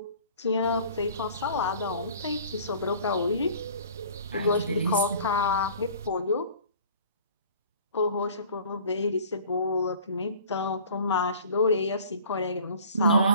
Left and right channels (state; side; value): inverted; both; correlation -0.48